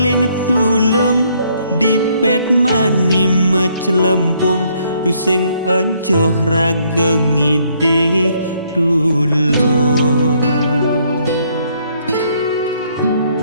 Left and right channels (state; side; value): inverted; both; correlation -0.69